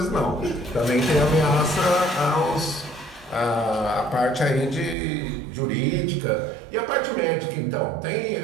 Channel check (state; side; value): drops out; left; at 5.0 s